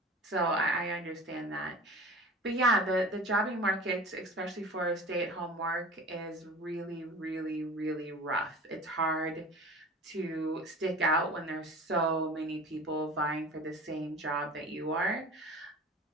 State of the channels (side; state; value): both; normal; correlation 0.38